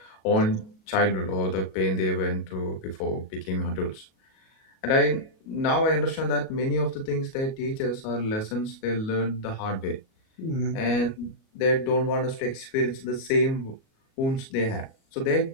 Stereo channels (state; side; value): late; right; 37 ms